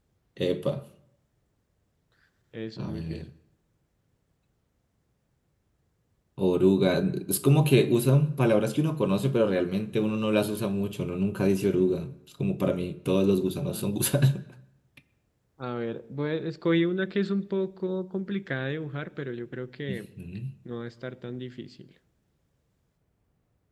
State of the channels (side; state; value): both; identical; correlation 1.00